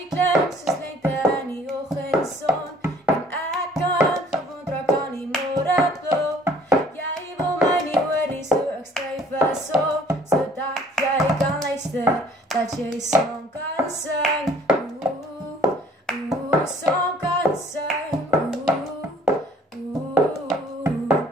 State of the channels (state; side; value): normal; both; correlation 0.56